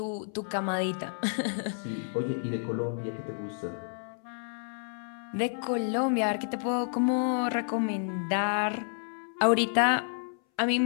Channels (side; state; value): right; silent; 58 dB below the other